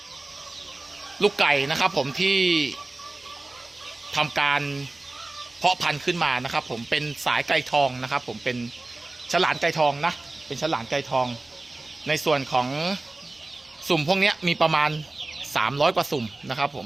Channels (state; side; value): quieter; left; 3.0 dB